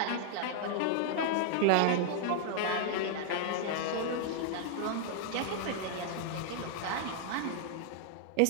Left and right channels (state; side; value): different; both; correlation 0.00